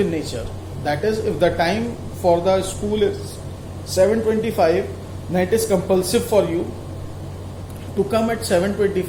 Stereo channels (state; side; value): identical; both; correlation 1.00